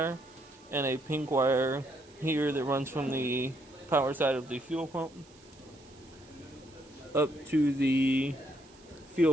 and a pink wire here that runs from the power side of the fuel pump up to the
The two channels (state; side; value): noise; right; hiss, 26 dB below the sound